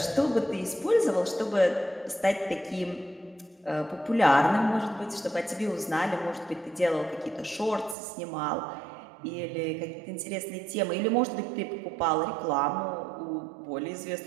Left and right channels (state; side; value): drops out; left; at 8.0 s